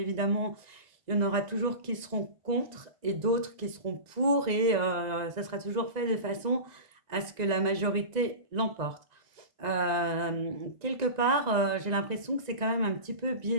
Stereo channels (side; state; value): left; late; 1.9 ms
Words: il y en aura toujours qui seront contre et d'autres qui seront pour et ça sera toujours fait de façon à ce que la majorité l'emporte. Quelque part, j'ai l'impression que c'est quand même un petit peu